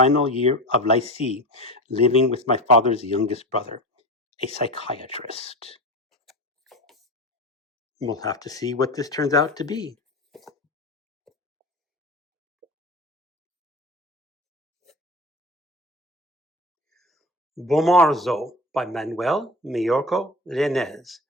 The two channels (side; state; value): both; normal; correlation 0.29